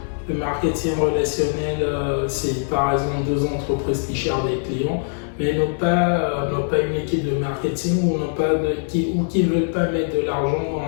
Le marketing relationnel, c'est par exemple 2 entreprises qui cherchent des clients, mais n'ont pas une équipe de marketing ou qui ne veulent pas mettre de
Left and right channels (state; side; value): silent; right; digital silence